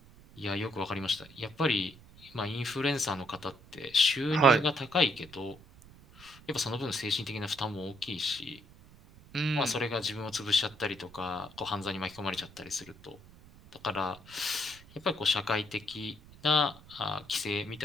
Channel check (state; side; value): noise; right; rumble, 22 dB below the sound